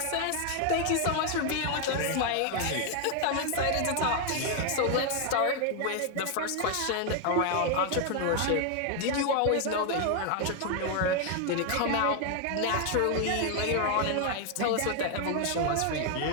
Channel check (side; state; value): both; different; correlation 0.00